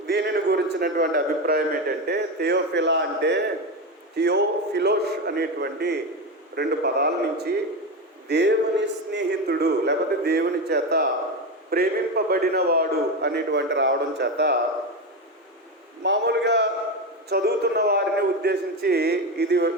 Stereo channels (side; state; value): both; normal; correlation 0.17